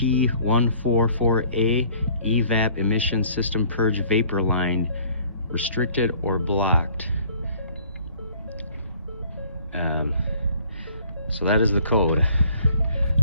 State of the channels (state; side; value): inverted; both; correlation -0.55